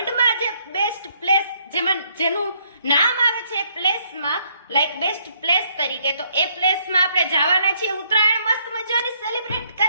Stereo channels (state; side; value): inverted; both; correlation -0.69